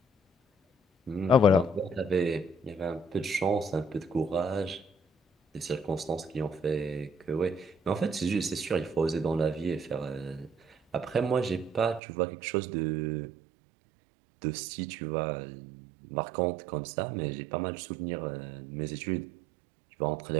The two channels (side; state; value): left; drops out; at 12.0 s